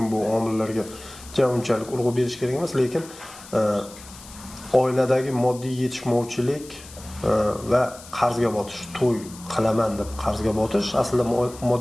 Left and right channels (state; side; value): noise; left; hiss, 18 dB below the sound